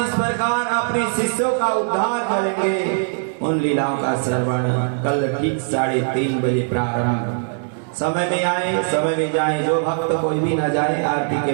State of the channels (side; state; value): left; silent; 63 dB below the other